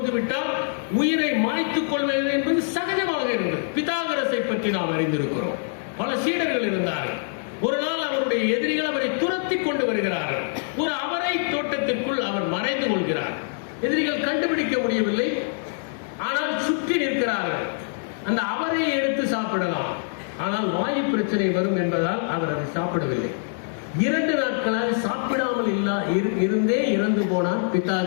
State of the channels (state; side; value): silent; right; digital silence